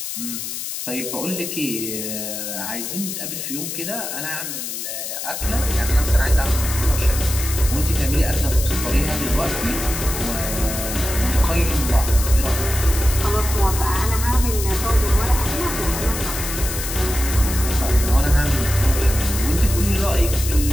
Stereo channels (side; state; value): left; noise; hiss, 6 dB below the sound